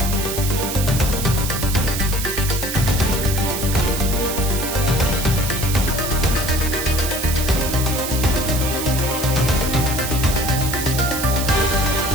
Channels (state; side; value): noise; right; hiss, 5 dB below the sound